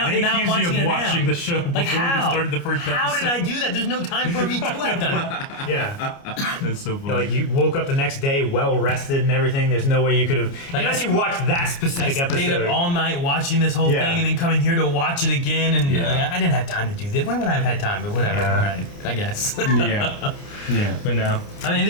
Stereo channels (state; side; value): late; right; 29 ms